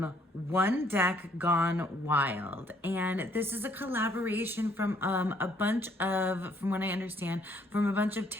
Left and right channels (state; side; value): normal; both; correlation 0.66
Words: Deck Gone Wild. And this is a collaboration from from what I understand, from a bunch of